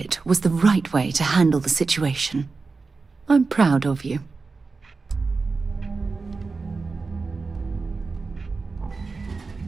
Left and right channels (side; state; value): left; quieter; 4.2 dB